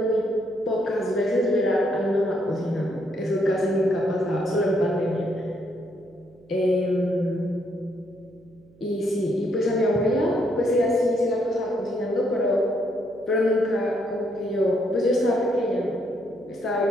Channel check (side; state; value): right; noise; hum, 28 dB below the sound